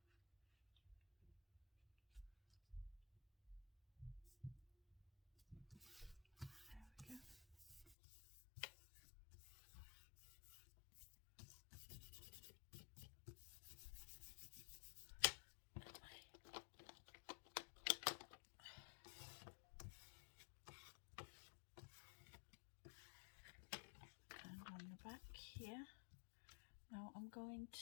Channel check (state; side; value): drops out; right; at 8.0 s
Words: Back here. Now I'm going